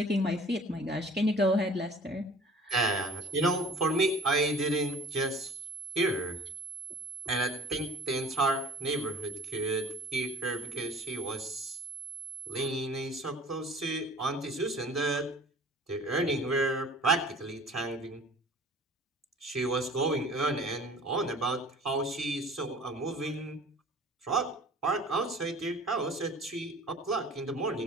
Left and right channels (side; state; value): both; normal; correlation 0.46